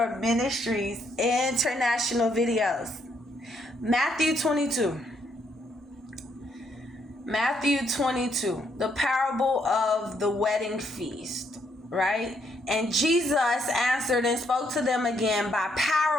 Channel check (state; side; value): normal; both; correlation 0.73